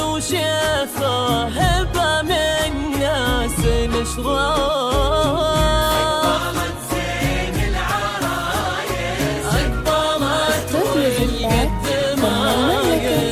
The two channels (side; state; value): both; identical; correlation 1.00